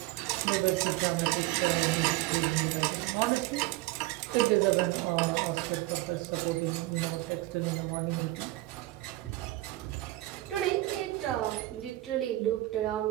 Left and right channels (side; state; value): left; quieter; 18.1 dB